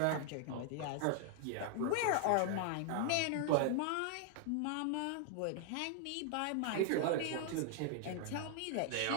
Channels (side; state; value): both; different; correlation 0.00